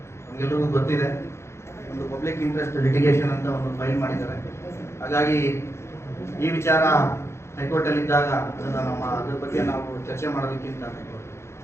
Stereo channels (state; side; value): late; right; 0.13 ms